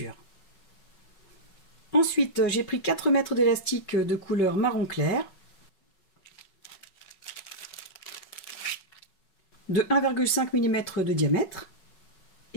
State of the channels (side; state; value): right; late; 5.4 ms